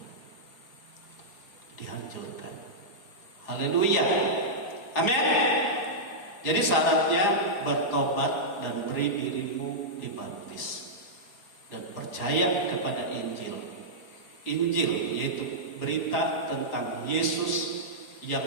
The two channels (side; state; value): right; late; 4.8 ms